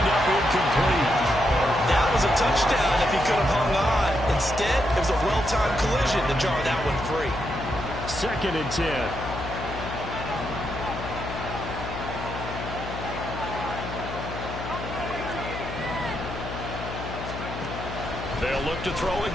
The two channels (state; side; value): noise; left; hum, 8 dB below the sound